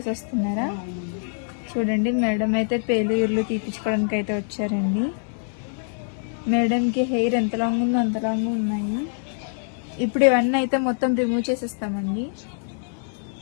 వస్తున్నారా? చూడండి మేడం అయితే పేలు తీపించుకోవడానికి అయితే వచ్చారండి. మేడంకి హెయిర్ ఎంత లాంగ్ ఉందో అంత లాంగ్ ఉన్నాయి. ఇప్పుడు ఇవన్నీ అయితే మొత్తం రిమూవ్ చేసేస్తామండి.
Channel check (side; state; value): right; silent; digital silence